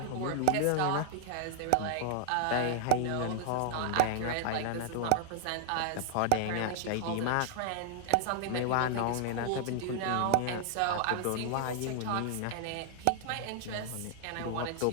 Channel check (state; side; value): different; both; correlation 0.00